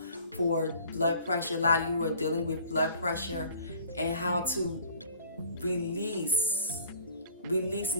for blood pressure. A lot of you are dealing with blood pressure, and how to release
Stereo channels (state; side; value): inverted; both; correlation -0.51